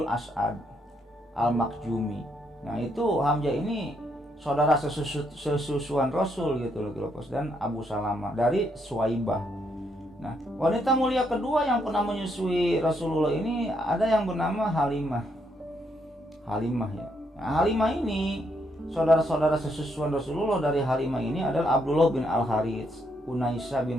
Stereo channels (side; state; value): both; normal; correlation 0.75